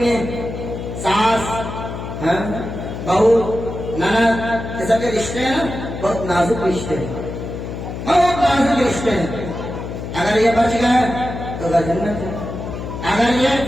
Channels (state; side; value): noise; left; hum, 7 dB below the sound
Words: میں ساس بہو نند، یہ سب کے رشتے ہیں بہت نازک رشتے ہیں، بہت نازک رشتے ہیں۔ اگر یہ بچ گئے تو گھر جنت ہے، اگر یہ